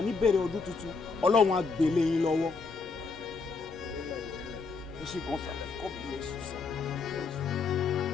níbẹ̀rẹ̀ ọdún tuntun Ọlọ́run á gbélé yín lọ́wọ́. God bless you, sir.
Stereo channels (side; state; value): right; quieter; 4.6 dB